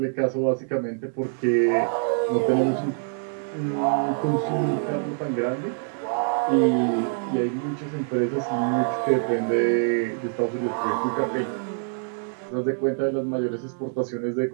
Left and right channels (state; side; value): silent; left; digital silence